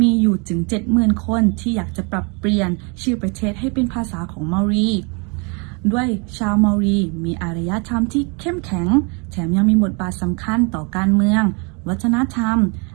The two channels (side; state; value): left; quieter; 32.9 dB